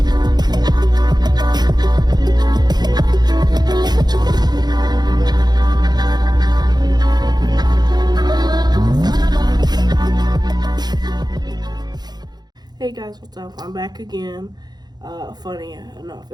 guys, what's up? I'm back again. Funny enough,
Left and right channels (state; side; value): late; left; 0.20 ms